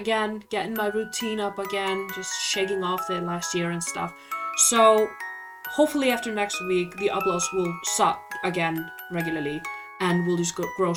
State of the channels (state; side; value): identical; both; correlation 1.00